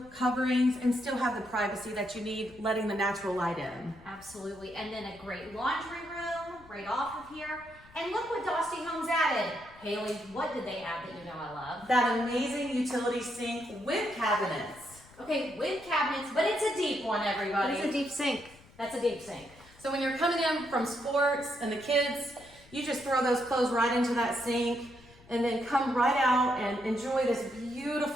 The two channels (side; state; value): left; noise; rumble, 24 dB below the sound